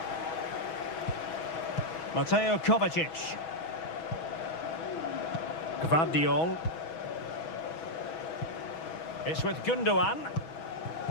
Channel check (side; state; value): right; late; 6.2 ms